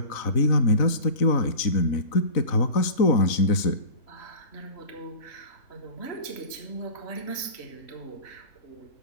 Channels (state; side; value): late; right; 4.0 ms